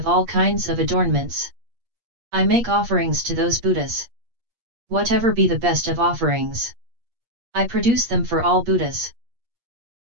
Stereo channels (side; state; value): left; late; 8.5 ms